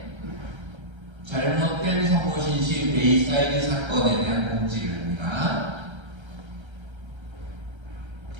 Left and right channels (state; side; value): late; left; 1.3 ms